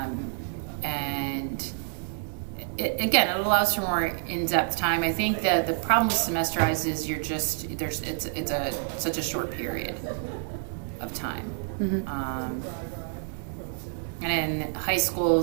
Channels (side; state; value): left; silent; 59 dB below the other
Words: it allows for more in-depth time. I think that the problem with semesterized is it's such a short period of time. And in high